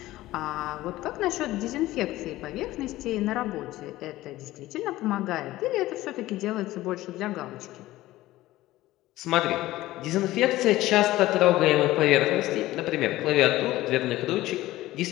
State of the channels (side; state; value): right; quieter; 16.6 dB